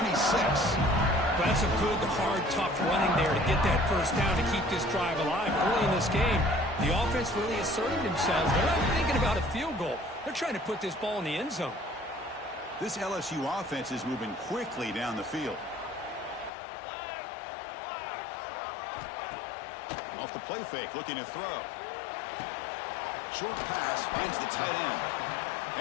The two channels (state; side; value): drops out; right; at 16.5 s